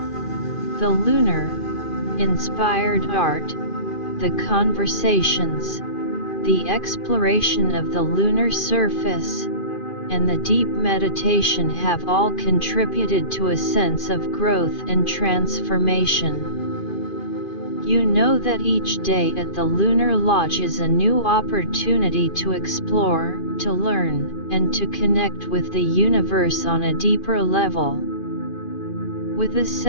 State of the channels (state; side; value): late; right; 2.5 ms